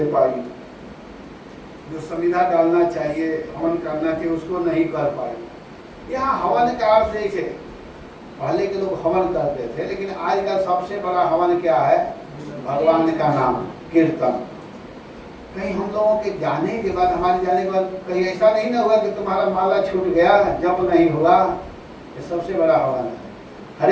पाई, जो संविधा डालना चाहिए, हवन करना चाहिए, उसको नहीं कर पाई। यहाँ हवन का अर्थ देखे, पहले के लोग हवन करते थे, लेकिन आज का सबसे बड़ा हवन क्या है? भगवान का नाम, कीर्तन। कहीं हम लोगों के जाने के बाद, हमारे जाने के बाद कहीं ऐसा नहीं ना हुआ कि तुम्हारा माला छूट गया, जप नहीं हुआ। ये सबसे बड़ा हवन है।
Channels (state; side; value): identical; both; correlation 1.00